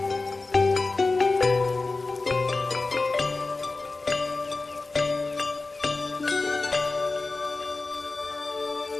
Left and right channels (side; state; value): right; quieter; 3.5 dB